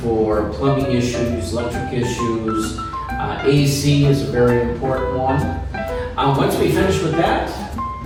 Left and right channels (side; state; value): both; identical; correlation 1.00